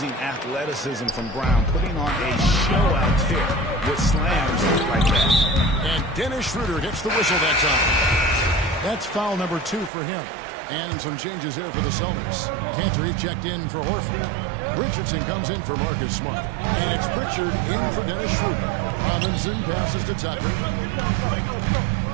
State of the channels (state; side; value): drops out; left; at 9.9 s